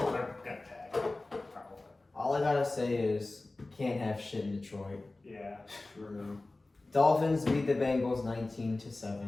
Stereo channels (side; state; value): right; quieter; 3.1 dB